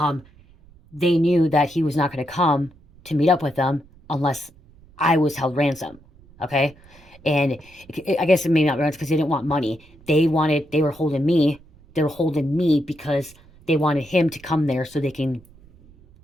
they knew that he was not going to come to meet up with them unless I was held ransom. Okay, and I guess it may not ransom because they didn't want money. They were holding me. They were holding me because they wanted him to come there so they can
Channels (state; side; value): noise; right; rumble, 26 dB below the sound